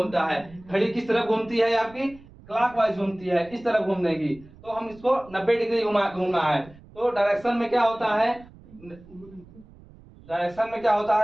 है। घड़ी किस तरफ घूमती है आपकी, क्लॉकवाइज घूमती है, इस तरफ घूमने की, तो हम इसको 90 डिग्री घूमना है। तो डायरेक्शन में क्या होता है, डायरेक्शन में क्या होता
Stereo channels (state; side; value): noise; right; rumble, 23 dB below the sound